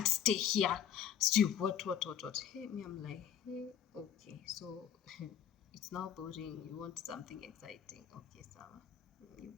stay here. What? Hey, me, I'm like, hey, okay, so it's now boring. You want something exciting. Okay, so you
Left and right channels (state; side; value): quieter; right; 9.2 dB